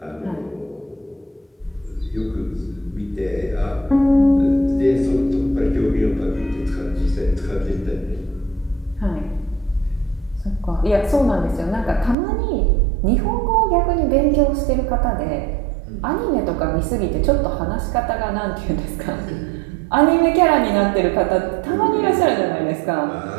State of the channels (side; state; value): left; drops out; at 12.2 s